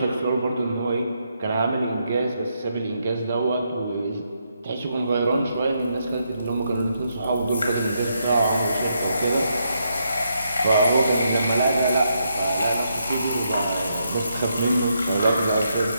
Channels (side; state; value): both; inverted; correlation -0.79